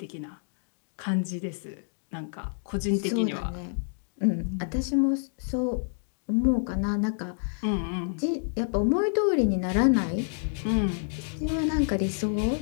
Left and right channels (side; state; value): right; silent; digital silence